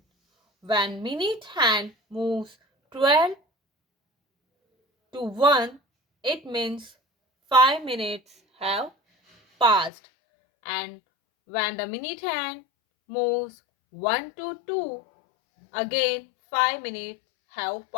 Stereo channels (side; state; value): right; drops out; at 9.9 s